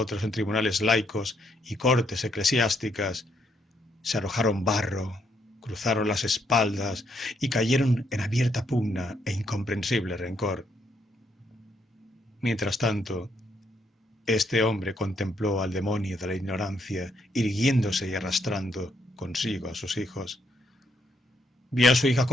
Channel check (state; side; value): normal; both; correlation 0.75